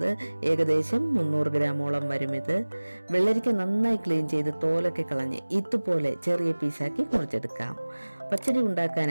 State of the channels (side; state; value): both; inverted; correlation -1.00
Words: ഏകദേശം 300 ഗ്രാമോളം വരും ഇത്. വെള്ളരിക്ക നന്നായി ക്ലീൻ ചെയ്ത് തോലൊക്കെ കളഞ്ഞ് ഇതുപോലെ ചെറിയ പീസാക്കി മുറിച്ചെടുക്കാം. പച്ചടി